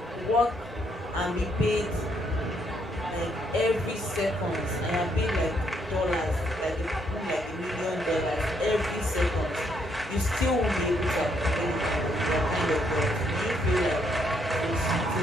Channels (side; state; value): both; normal; correlation 0.73